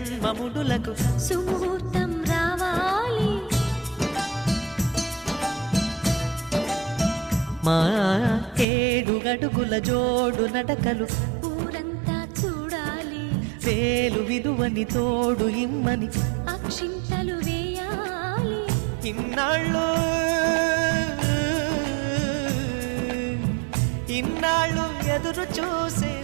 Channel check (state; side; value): drops out; left; at 8.7 s